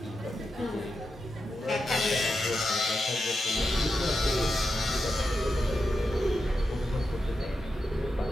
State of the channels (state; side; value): normal; both; correlation 0.88